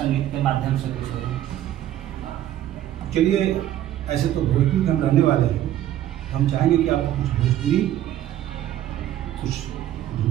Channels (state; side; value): quieter; left; 12.4 dB